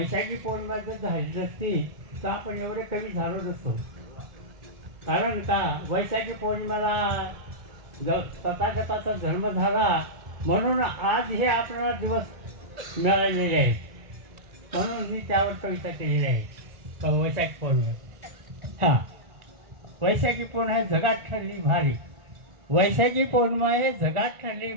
पौर्णिमा जर झाली नसती तर आपण एवढे कवी झालो नसतो. कारण का वैशाखी पौर्णिमाला तथागताचा जन्म झाला म्हणून आज हे आपल्याला दिवस मिळालेले आहेत. म्हणून मी त्यावर कविता केलेली आहे. वैशाखी पौर्णिमा. हां, वैशाखी पौर्णिमा आहे जगात ठरली भारी. वैशाखी पौर्णिमा आहे जगात ठरली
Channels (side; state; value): left; late; 1.4 ms